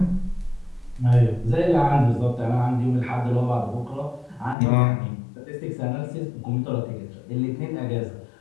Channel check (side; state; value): right; drops out; at 4.5 s